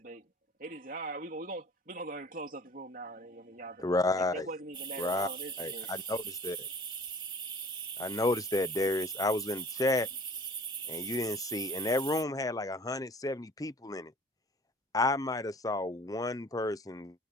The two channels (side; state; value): both; normal; correlation 0.47